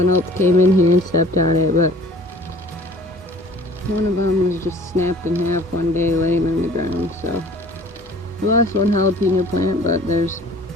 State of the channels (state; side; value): normal; both; correlation 0.49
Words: else came in here and stepped on it, but one of them was just snapped in half one day laying on the ground. So I lost one jalapeno plant, but there's